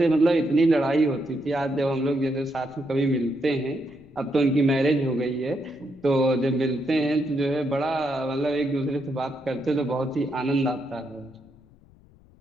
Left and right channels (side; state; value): left; noise; rumble, 27 dB below the sound